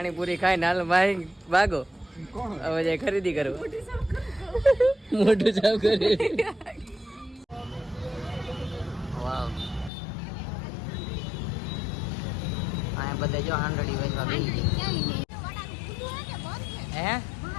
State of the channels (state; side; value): drops out; right; at 9.9 s